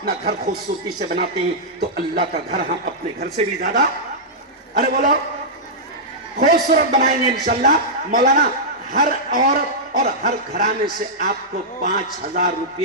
گھر خوبصورتی سے بناتے ہیں تو اللہ کا گھر ہم اپنے گھر سے بھی زیادہ، ارے بولو، خوبصورت بنائیں گے انشاءاللہ۔ مولانا ہر عورت اور ہر گھرانے سے آپ کو 5000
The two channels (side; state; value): both; normal; correlation -0.11